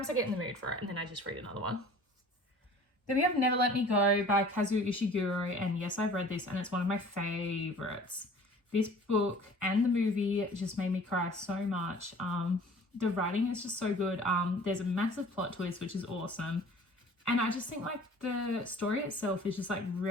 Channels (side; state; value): both; normal; correlation 0.47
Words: I get in the mood for it and then I just read another one. Then we have Never Let Me Go by Kazuo Ishiguro, and yes, I've read this and it's one of my favorites. This book and the movie just made me cry so much. The writing is just so good. There's a massive plot twist, which is awesome. And I just think like the story itself is just like